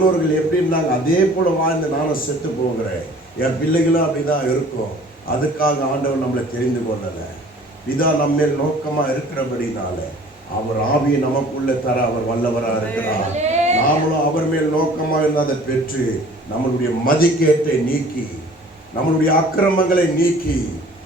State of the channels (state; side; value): normal; both; correlation 0.50